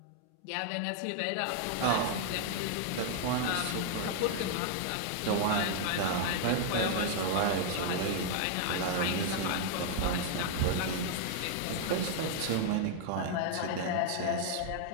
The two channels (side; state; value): both; different; correlation 0.00